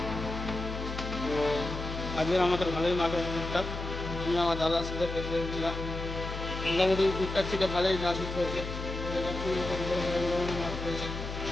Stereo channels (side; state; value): left; noise; hum, 6 dB below the sound